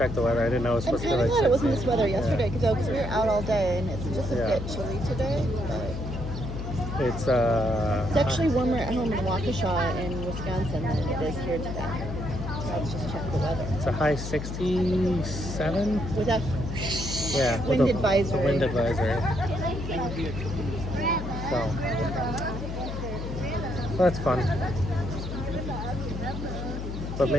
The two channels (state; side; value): noise; left; hum, 6 dB below the sound